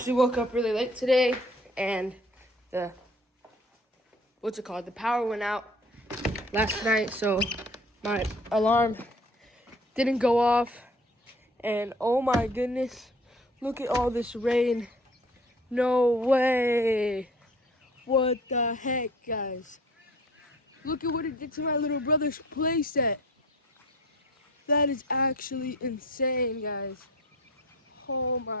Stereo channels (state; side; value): normal; both; correlation 0.48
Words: woke up really late today, and the power went out last night, so my alarm didn't go off. And oh my goodness, look at all this rain. No way. What the heck, guys? Look at what it did to my little brother's playset. That is actually insane, guys. Oh